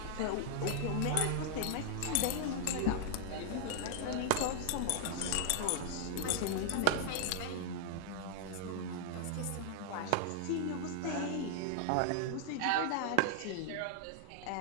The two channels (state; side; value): different; both; correlation -0.01